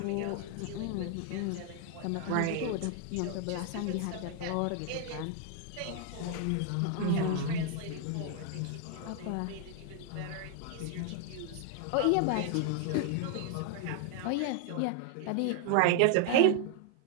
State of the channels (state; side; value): different; both; correlation 0.00